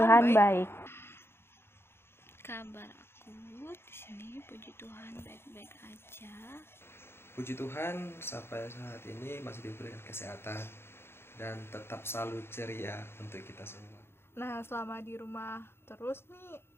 baik. Kabar aku di sini puji Tuhan baik-baik aja. Puji Tuhan sampai saat ini masih diberikan kesehatan dan tetap selalu ceria untuk kita semua. Nah selama di rumah terus nih,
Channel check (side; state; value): right; late; 0.12 ms